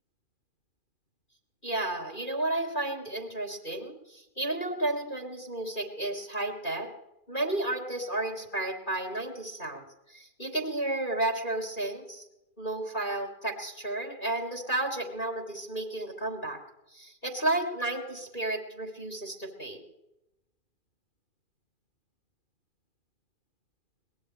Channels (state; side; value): late; right; 2.4 ms